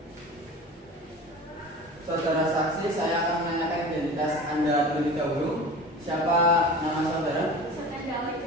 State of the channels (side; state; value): both; normal; correlation 0.36